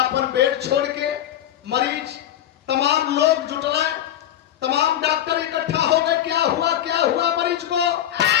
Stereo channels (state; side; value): quieter; right; 11.6 dB